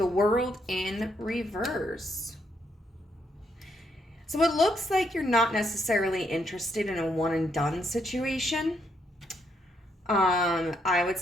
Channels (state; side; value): normal; both; correlation 0.75